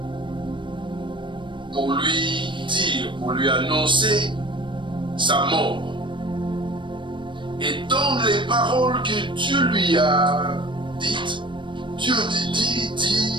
pour lui dire, pour lui annoncer sa mort. Et dans les paroles que Dieu lui a dites, Dieu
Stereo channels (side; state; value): left; late; 0.23 ms